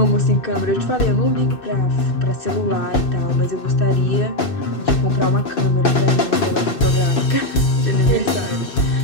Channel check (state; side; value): late; right; 2.6 ms